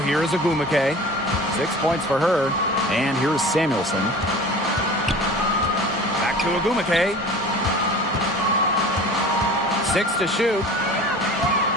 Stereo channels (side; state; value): both; normal; correlation 0.40